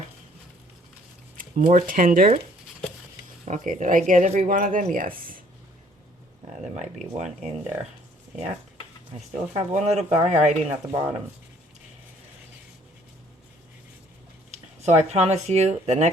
more tender. Okay, did I get every one of them? Yes. There might be one in there. Yeah. I still have one little guy hiding at the bottom. So I promise you, the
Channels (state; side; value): normal; both; correlation 0.60